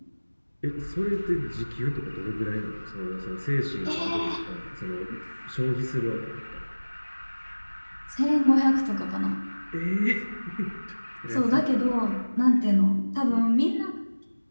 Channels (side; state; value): both; inverted; correlation -1.00